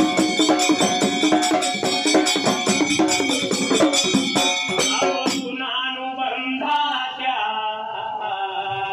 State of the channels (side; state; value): both; identical; correlation 1.00